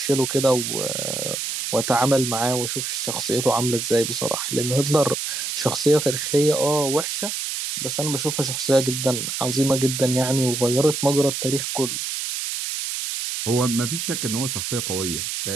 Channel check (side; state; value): right; noise; hiss, 3 dB below the sound